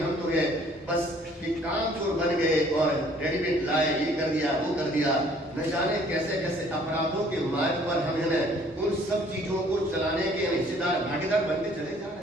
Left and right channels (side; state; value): both; normal; correlation 0.58